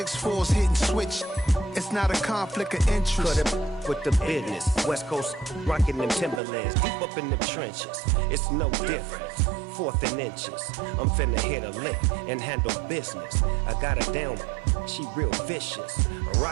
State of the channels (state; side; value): drops out; left; at 6.4 s